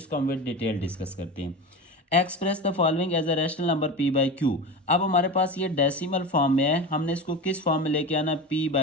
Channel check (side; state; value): both; normal; correlation 0.27